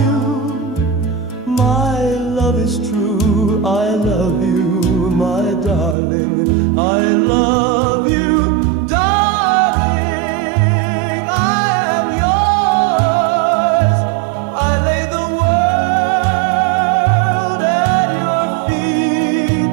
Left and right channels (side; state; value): left; drops out; at 6.0 s